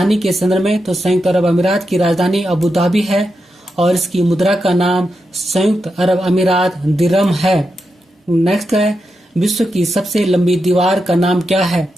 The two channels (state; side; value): normal; both; correlation 0.87